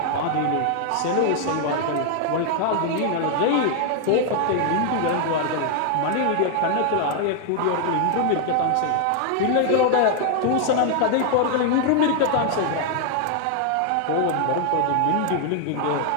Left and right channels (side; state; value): both; different; correlation 0.00